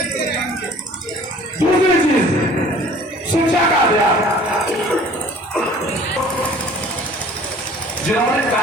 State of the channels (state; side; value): normal; both; correlation 0.49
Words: दूसरी चीज शिक्षा का अध्याय, जिन्होंने